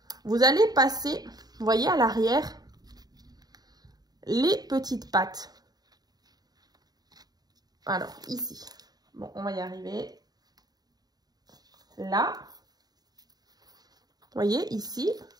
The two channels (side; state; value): left; late; 0.19 ms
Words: Vous allez passer, vous voyez, à l'arrière, les petites pattes. Alors, ici. Bon, on va y arriver. Là. Vous voyez, ici.